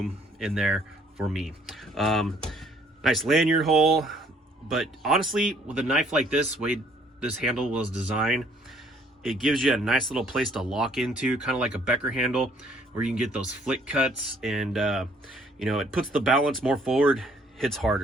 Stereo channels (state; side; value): normal; both; correlation 0.62